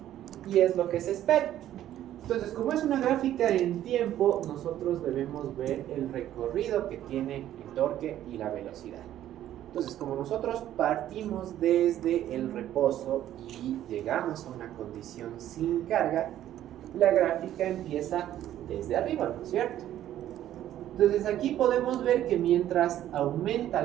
Y es lo que se espera. Entonces, como es una gráfica en tiempo, nosotros debemos ver el recorrido que tiene el torque y la velocidad. Entonces, como nosotros partimos desde el reposo y llegamos a una condición sin carga, la gráfica empieza desde arriba, ¿no es cierto? Entonces aquí podemos ver que mientras aumenta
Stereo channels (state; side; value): quieter; left; 12.2 dB